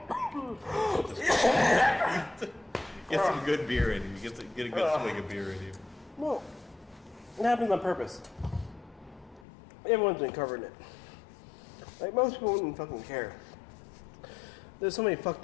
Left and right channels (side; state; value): right; drops out; at 9.5 s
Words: Get some good beer in you. Get a good swig of beer in you. Well, it happens on purpose. Everyone's been covering it. Like, most people wouldn't fucking care. There's so many fucked